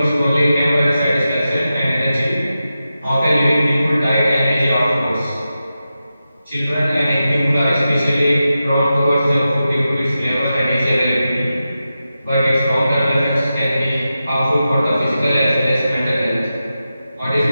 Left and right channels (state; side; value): inverted; both; correlation -0.91